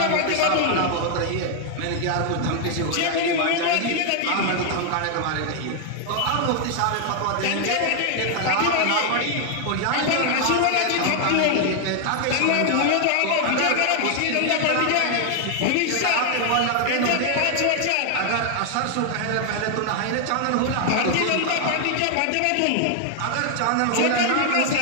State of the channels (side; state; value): both; different; correlation 0.00